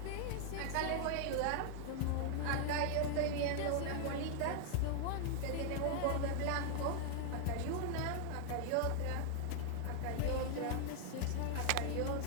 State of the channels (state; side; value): different; both; correlation 0.00